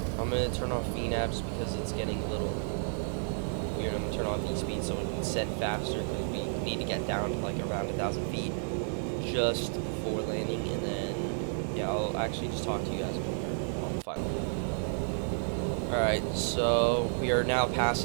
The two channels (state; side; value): silent; left; digital silence